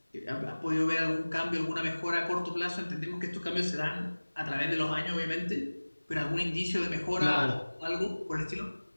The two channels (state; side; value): inverted; both; correlation -1.00